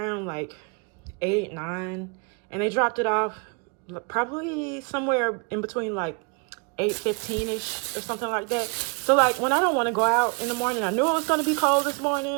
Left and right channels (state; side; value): quieter; left; 33.9 dB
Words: like 8, 9, and they dropped it off probably somewhere in between like 8:15ish or something like that. So like when I don't want to go out in the morning, I knew it was going to be cold this